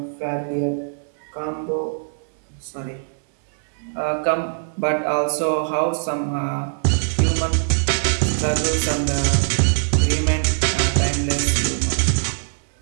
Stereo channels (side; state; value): left; silent; 64 dB below the other